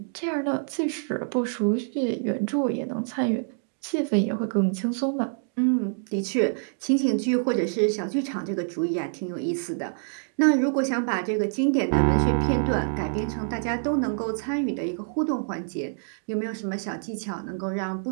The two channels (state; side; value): silent; left; digital silence